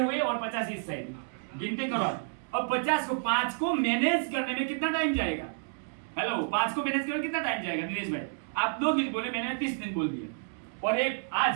हुए और 50 इस साइड, गिनती करो। और 50 को 5 को मैनेज करने में कितना टाइम जाएगा? हेलो, 5 को मैनेज करने में कितना टाइम जाएगा? दिनेश भाई, आप 2 दिन बोले, मैंने 30 दिन बोल दिया, और एक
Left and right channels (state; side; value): silent; left; digital silence